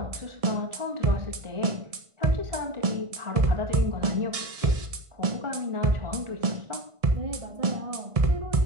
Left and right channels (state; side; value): late; left; 1.7 ms